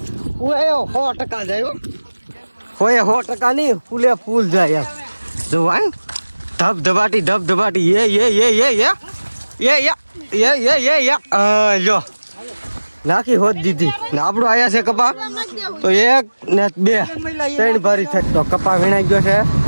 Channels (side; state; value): both; inverted; correlation -1.00